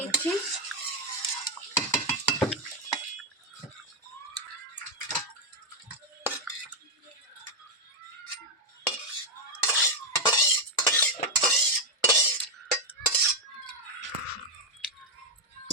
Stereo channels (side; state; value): both; normal; correlation 0.03